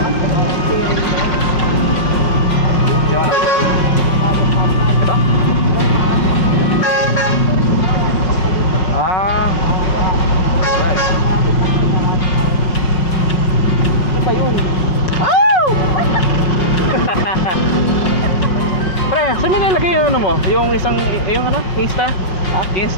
Pre, saan mo nilagay yung ano mo? Yung isang, yung ano? Insta? Ha?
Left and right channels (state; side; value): late; right; 5.5 ms